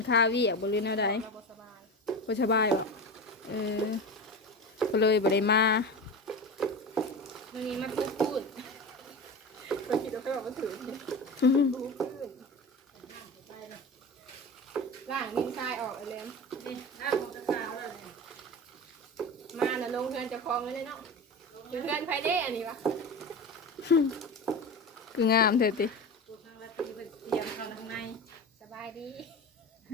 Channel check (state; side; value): normal; both; correlation 0.27